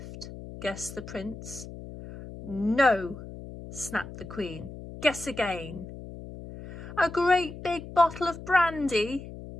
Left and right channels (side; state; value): left; noise; hum, 12 dB below the sound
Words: Guessed the prince. No, snapped the Queen. Guess again. A great big bottle of brandy?